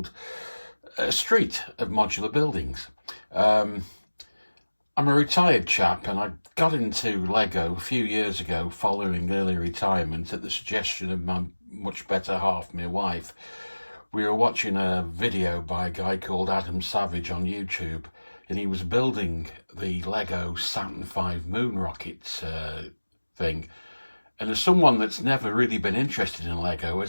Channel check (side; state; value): both; inverted; correlation -1.00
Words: a street of modular buildings. I'm a retired chap and I got into Lego a few years ago following early retirement at the suggestion of my much better half, my wife. We were watching a video by a guy called Adam Savage on YouTube, and he was building the Lego Saturn V moon rocket thing. And as someone that's never really been interested in Lego,